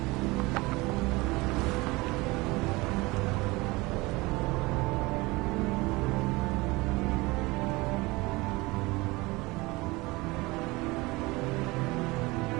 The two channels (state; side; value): quieter; left; 22.7 dB